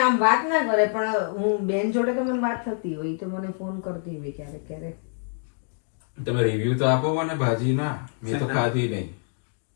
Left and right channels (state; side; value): silent; right; 61 dB below the other